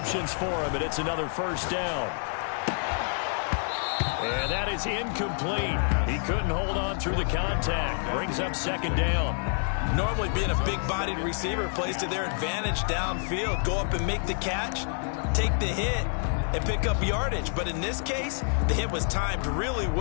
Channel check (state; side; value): silent; right; 59 dB below the other